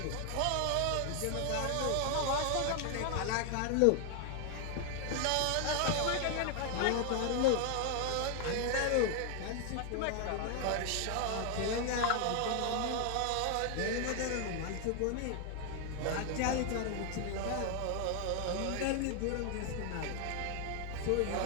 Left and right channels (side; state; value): both; different; correlation 0.00